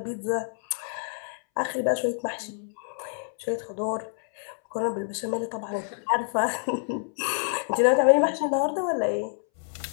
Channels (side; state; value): right; silent; 60 dB below the other